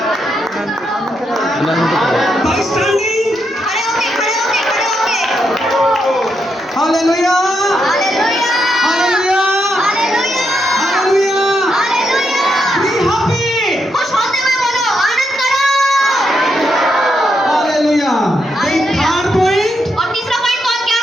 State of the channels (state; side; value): normal; both; correlation 0.81